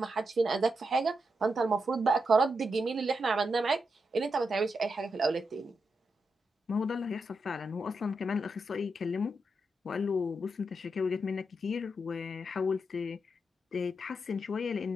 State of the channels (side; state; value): both; normal; correlation 0.85